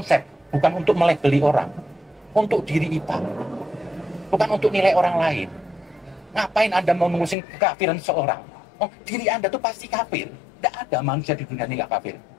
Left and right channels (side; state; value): right; drops out; at 7.4 s